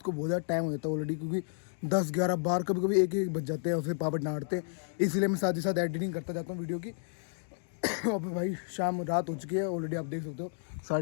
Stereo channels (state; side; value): silent; right; digital silence